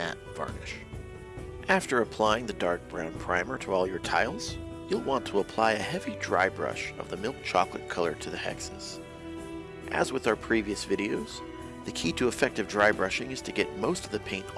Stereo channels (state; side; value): identical; both; correlation 1.00